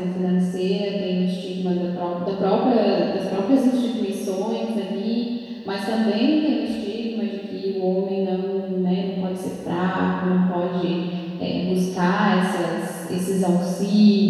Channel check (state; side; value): identical; both; correlation 1.00